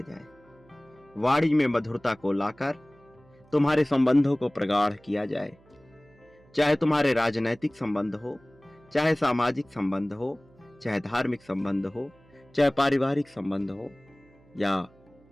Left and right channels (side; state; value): right; noise; hum, 29 dB below the sound